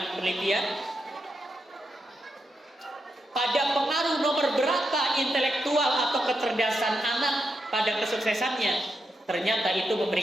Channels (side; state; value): both; normal; correlation 0.84